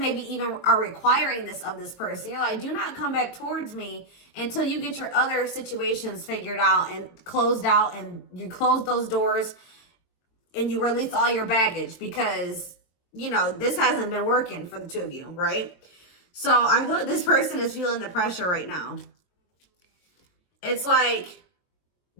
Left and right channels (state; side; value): late; right; 22 ms